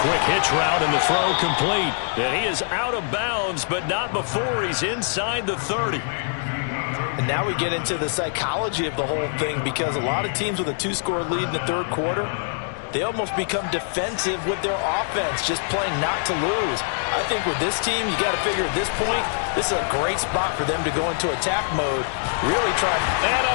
quick hitch route and the throw complete. And he is out of bounds, but not before he's inside the 30. And now we get into the psychology of the whole thing, because a lot of teams with a 2-score lead in the 3rd quarter, they almost become defensive with their offense, just playing not to lose. I think with this team, you got to figure at this point, this is a great spot for them to go into attack mode, really try. And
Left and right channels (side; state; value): right; silent; digital silence